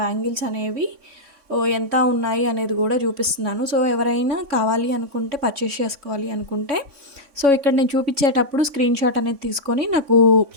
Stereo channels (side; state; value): left; late; 3.5 ms